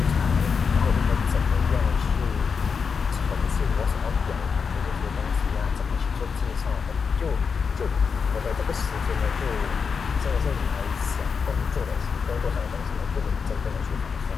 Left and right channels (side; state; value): right; quieter; 5.7 dB